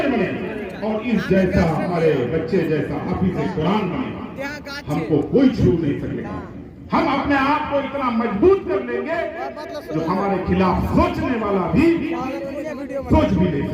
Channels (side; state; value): both; identical; correlation 1.00